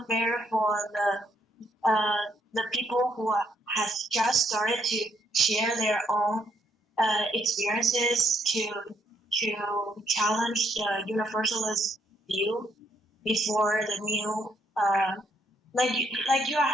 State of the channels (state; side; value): normal; both; correlation 0.72